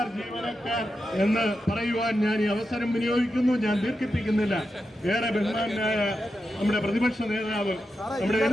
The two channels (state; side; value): normal; both; correlation 0.88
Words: ജീവനക്കാർ എന്ന് പറയുവാൻ ഞാൻ ഈ അവസരം വിനിയോഗിക്കുന്നു. ഞാൻ ദീർഘിപ്പിക്കുന്നില്ല. ഏറെ ബഹുമാനായ നമ്മുടെ പ്രതിപക്ഷ നേതാവ് നമ്മുടെ